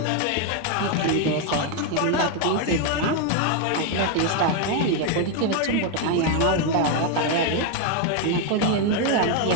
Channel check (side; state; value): both; different; correlation 0.01